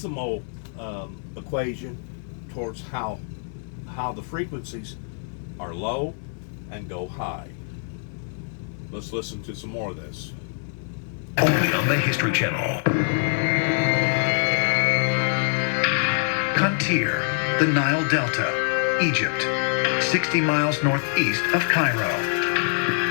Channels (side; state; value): right; silent; 62 dB below the other